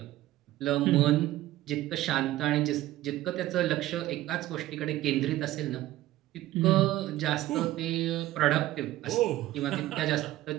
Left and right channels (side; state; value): left; quieter; 15.3 dB